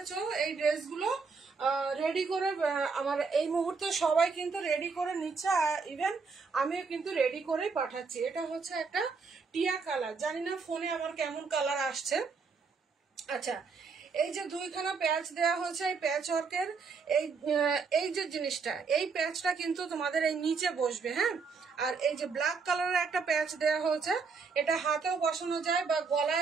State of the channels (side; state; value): left; quieter; 4.9 dB